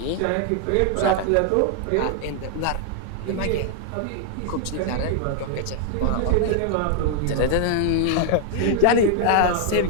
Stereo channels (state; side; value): different; both; correlation 0.00